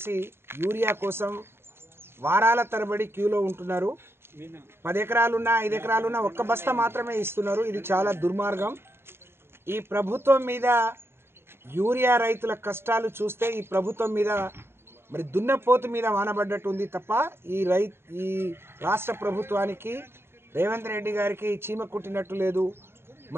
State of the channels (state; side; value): late; left; 0.11 ms